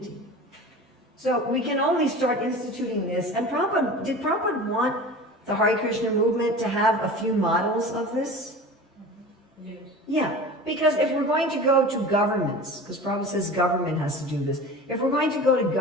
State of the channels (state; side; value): normal; both; correlation 0.36